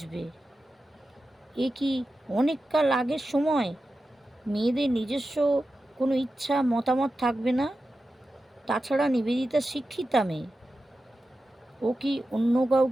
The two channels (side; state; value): both; normal; correlation 0.92